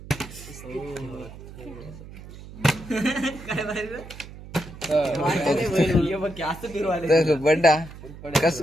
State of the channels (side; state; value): right; noise; hum, 15 dB below the sound